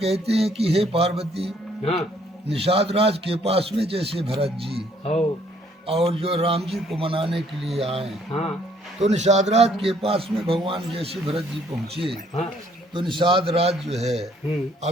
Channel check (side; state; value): both; normal; correlation 0.64